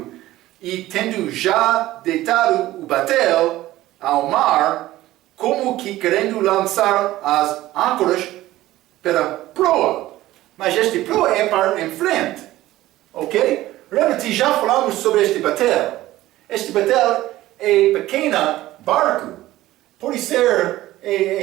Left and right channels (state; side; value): quieter; left; 15.9 dB